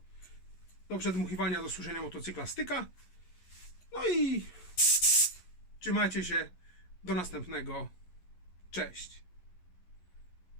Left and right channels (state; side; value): late; right; 11 ms